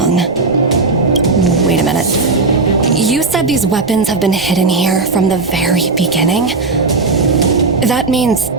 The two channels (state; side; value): quieter; left; 3.7 dB